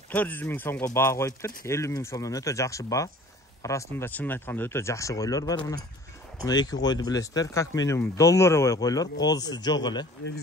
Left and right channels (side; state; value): both; normal; correlation 0.48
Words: 400 min soğuk bağa koyuptur. 50 min soğuktan öte jakşı bağa. Arasında çınını aytkanda öte jakşı koylar var buna. Мына эки койду билесиздер, как минимум долларовый койлор, козусу жок эле.